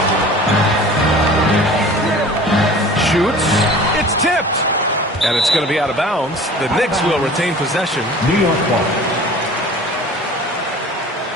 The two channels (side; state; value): both; normal; correlation 0.43